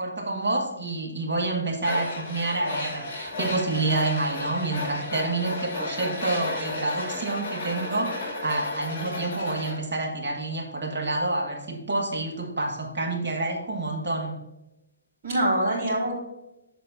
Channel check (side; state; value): both; inverted; correlation -0.58